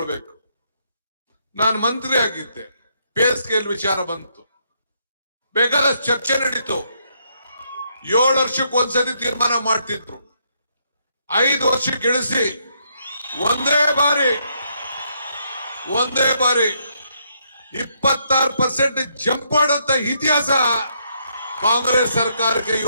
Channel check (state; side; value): inverted; both; correlation -0.75